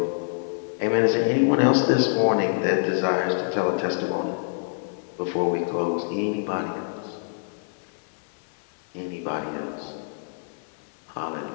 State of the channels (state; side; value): silent; right; digital silence